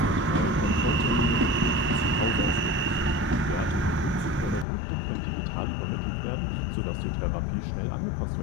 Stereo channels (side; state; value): right; drops out; at 4.7 s